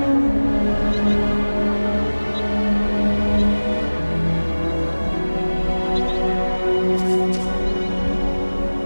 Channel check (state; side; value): inverted; both; correlation -1.00